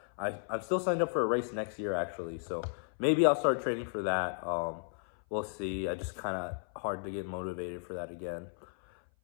I'm still signed up for a race next year, actually. So maybe I'll start training for that. We'll see. I just kind of hard to get motivated for that again.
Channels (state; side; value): silent; right; 55 dB below the other